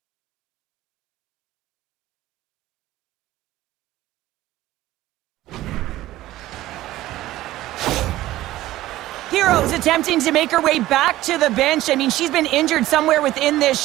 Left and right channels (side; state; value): left; quieter; 15.6 dB